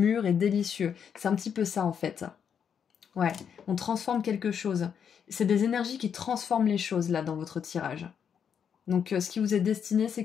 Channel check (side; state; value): right; quieter; 7.6 dB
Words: et délicieux. C'est un petit peu ça en fait. Ouais, on transforme quelque chose. C'est des énergies qui transforment les choses là dans votre tirage. Donc ce qui vous est destiné, c'est